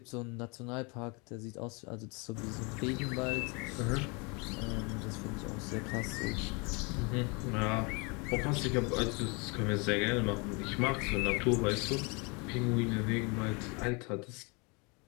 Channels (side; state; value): right; quieter; 30.7 dB